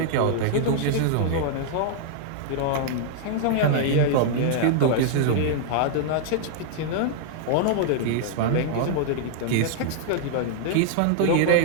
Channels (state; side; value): different; both; correlation -0.01